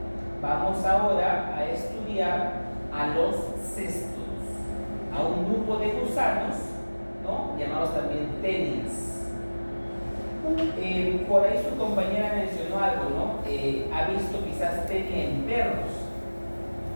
Vamos ahora a estudiar a los cestos, a un grupo de gusanos, ¿no? Llamados también tenias. Por ahí su compañera mencionó algo, ¿no? Ha visto quizás tenia en perros.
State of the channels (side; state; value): both; inverted; correlation -1.00